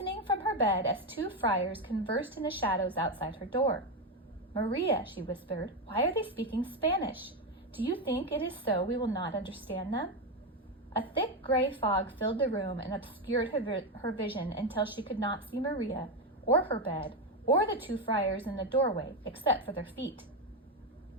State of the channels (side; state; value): both; normal; correlation 0.10